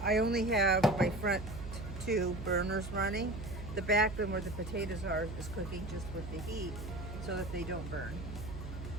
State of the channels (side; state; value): right; noise; hum, 9 dB below the sound